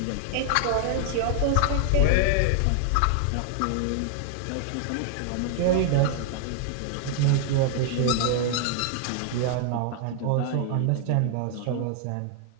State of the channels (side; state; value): both; different; correlation 0.00